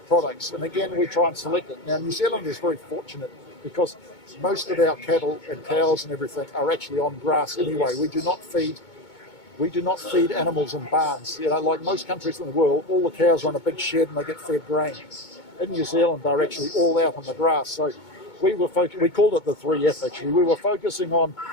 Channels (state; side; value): late; right; 2.2 ms